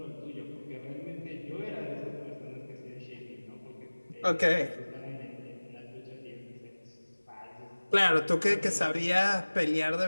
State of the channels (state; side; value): inverted; both; correlation -1.00